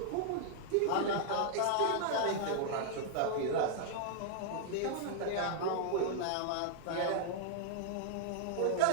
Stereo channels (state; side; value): different; both; correlation -0.01